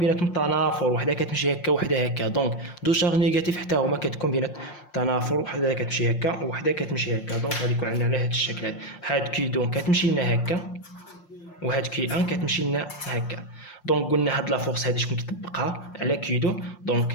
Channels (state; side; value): late; right; 5.7 ms